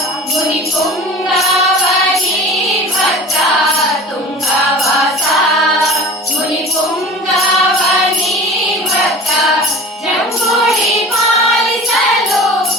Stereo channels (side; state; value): both; normal; correlation 0.39